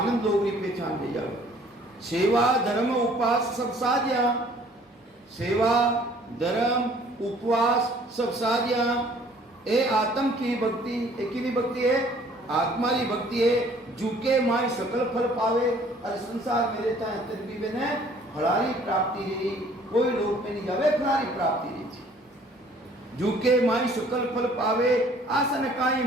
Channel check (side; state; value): both; normal; correlation 0.56